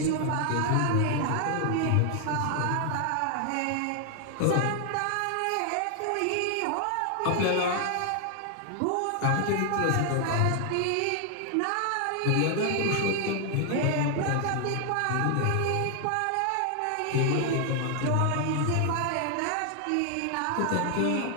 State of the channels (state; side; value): different; both; correlation 0.00